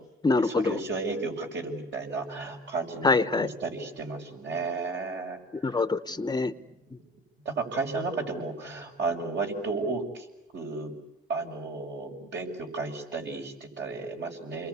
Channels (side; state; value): both; normal; correlation 0.42